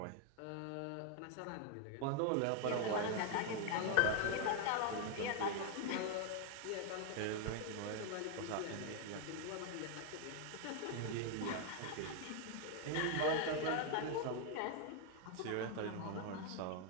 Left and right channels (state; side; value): different; both; correlation 0.00